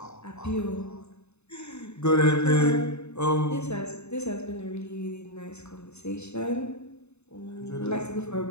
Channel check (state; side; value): late; right; 0.81 ms